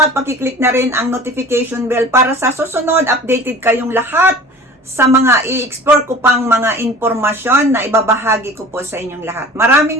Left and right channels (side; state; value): both; normal; correlation 0.43